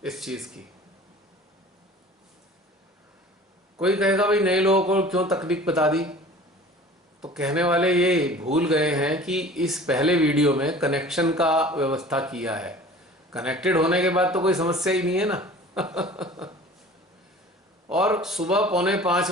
इस चीज की। कोई कहेगा भाई नए लोगों को क्यों तकनीक बता दी, तो कहने वाले ये भूल गए हैं कि इस पहले वीडियो में कनेक्शन का व्यवस्था किया है। कनेक्टेड होने के बाद तो कोई समस्या ही नहीं है ना। और सुबह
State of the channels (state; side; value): normal; both; correlation 0.43